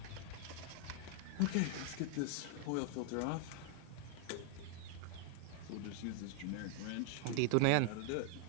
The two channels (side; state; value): both; different; correlation 0.00